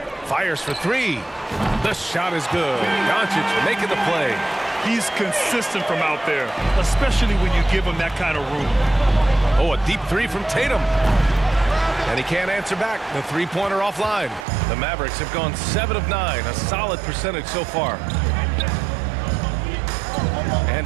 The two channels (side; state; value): left; drops out; at 14.5 s